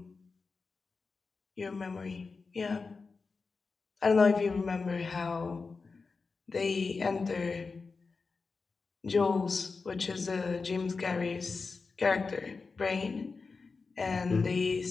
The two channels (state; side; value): quieter; right; 4.4 dB